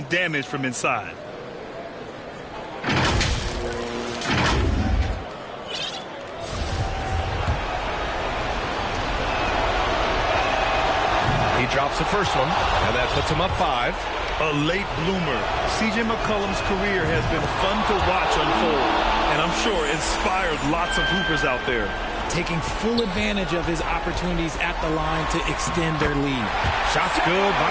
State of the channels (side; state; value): both; identical; correlation 1.00